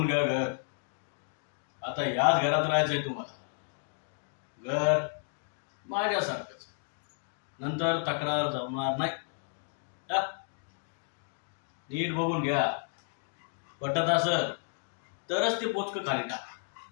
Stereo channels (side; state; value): right; silent; 56 dB below the other